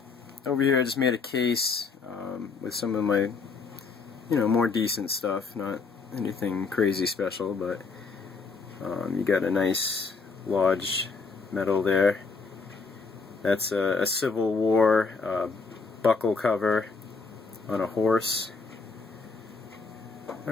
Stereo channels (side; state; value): right; quieter; 4.6 dB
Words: here I just made a case with some of my, more decent stuff. Not anything crazy special, but you got a nice Lodge medal there. That's a Civil War buckle cover on a horse.